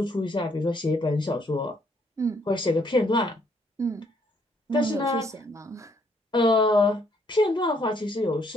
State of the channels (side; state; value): both; normal; correlation 0.69